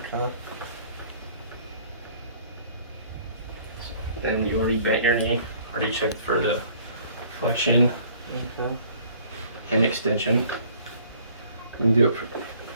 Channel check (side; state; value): both; inverted; correlation -0.56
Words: Then you already bent your knee. Already checked for the flexion Okay. and extension. You can do it for